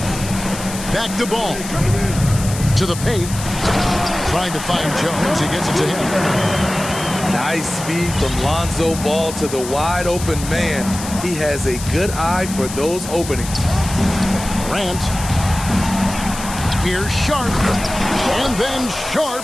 Back to Ball. To the paint. Trying to find Jones. He gets it to him. Nice speed from Lonzo Ball to the wide open man. He has a good eye for those openings. Grant. Here's Sharp. And then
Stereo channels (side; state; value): left; noise; hiss, 10 dB below the sound